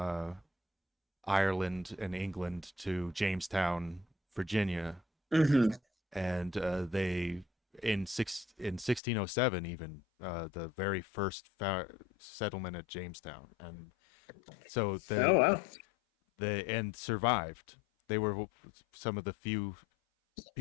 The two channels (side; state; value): right; drops out; at 9.0 s